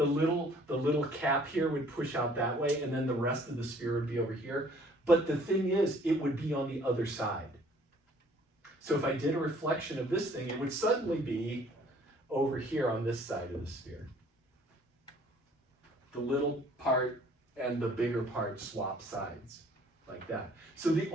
little cap here would push out that way, and then the rest of the sphere would be over here. But the thing is, it would be on the other side. So if I did a reflection of this thing, it would suddenly be over here on this side of the sphere. The little part and the bigger part swap sides like that. So the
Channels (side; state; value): both; normal; correlation 0.57